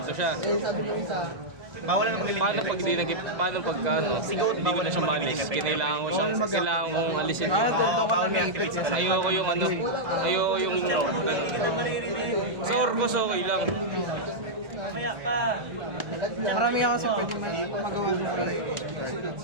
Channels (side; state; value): left; late; 1.6 ms